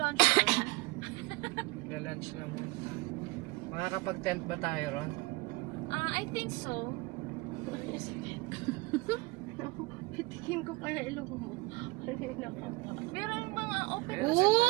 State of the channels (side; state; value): left; quieter; 23.6 dB